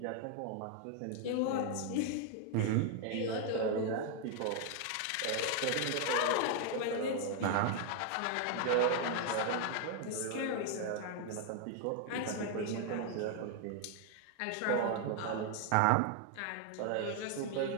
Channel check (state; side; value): different; both; correlation 0.00